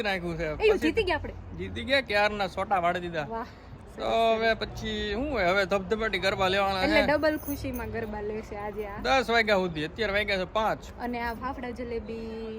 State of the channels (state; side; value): identical; both; correlation 1.00